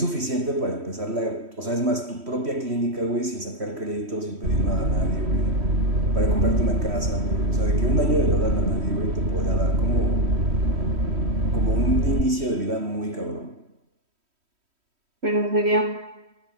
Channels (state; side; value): late; left; 3.1 ms